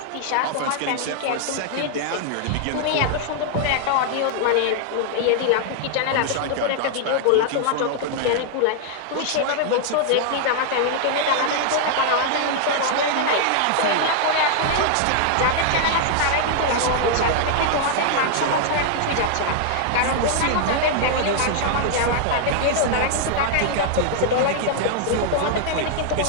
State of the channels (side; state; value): both; different; correlation 0.00